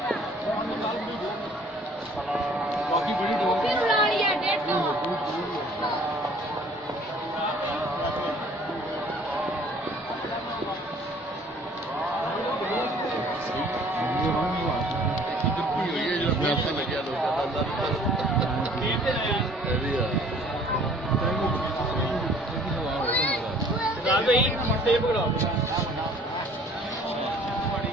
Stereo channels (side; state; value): both; normal; correlation 0.54